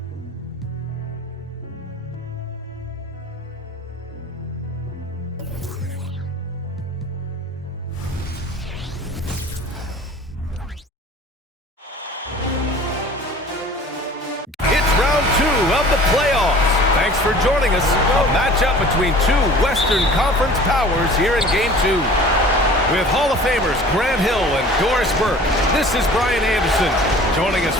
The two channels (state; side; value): normal; both; correlation 0.45